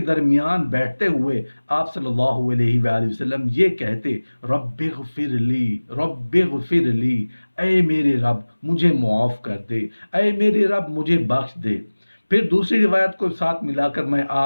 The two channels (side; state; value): both; inverted; correlation -1.00